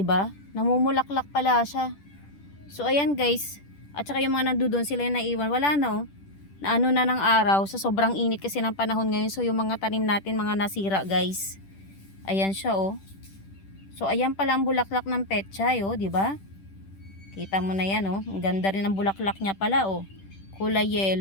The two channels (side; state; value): right; late; 10 ms